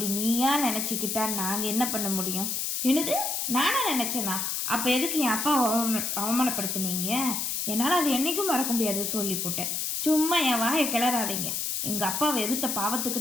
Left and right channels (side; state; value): left; noise; hiss, 1 dB below the sound